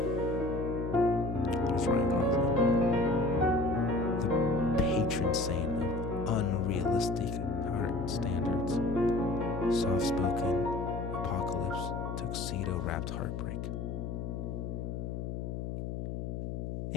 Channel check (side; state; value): left; noise; hum, 4 dB below the sound